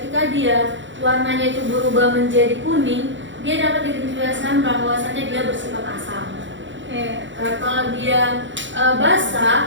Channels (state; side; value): late; left; 0.54 ms